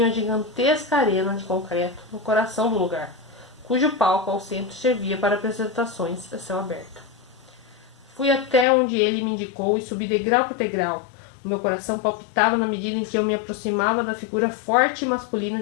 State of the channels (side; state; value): right; drops out; at 8.7 s